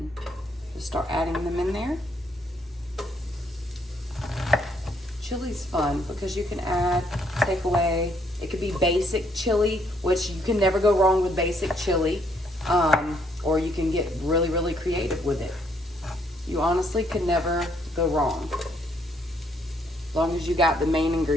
just start adding them in there. Chili's fun because you can take away. It could be basic chili, which you can never go wrong with basic chili, or you can get really, really creative with it. You honestly can never go wrong, as long as you got the main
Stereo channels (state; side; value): normal; both; correlation 0.70